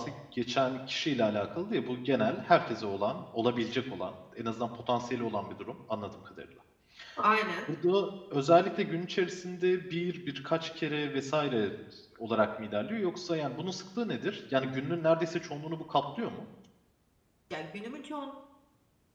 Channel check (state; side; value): identical; both; correlation 1.00